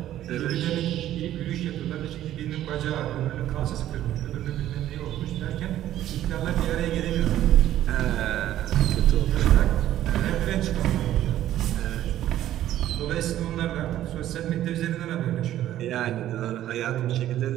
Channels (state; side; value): quieter; left; 12.7 dB